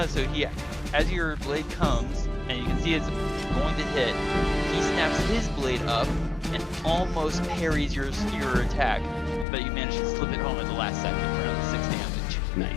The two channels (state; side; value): drops out; right; at 9.5 s